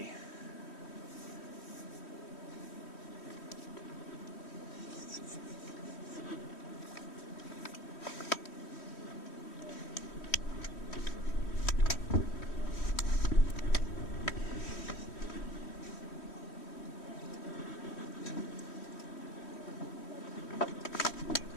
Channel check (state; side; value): late; right; 3.1 ms